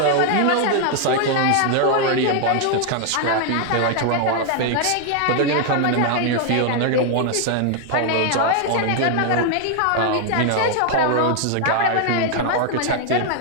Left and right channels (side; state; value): both; different; correlation 0.00